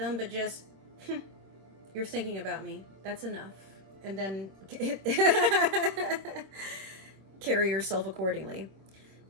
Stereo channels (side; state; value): left; late; 26 ms